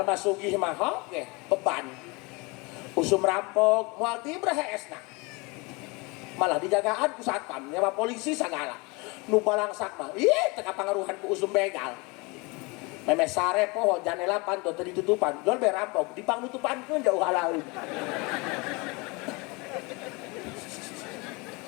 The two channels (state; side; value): quieter; right; 27.2 dB